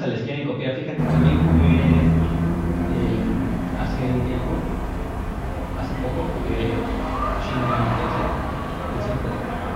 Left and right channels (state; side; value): identical; both; correlation 1.00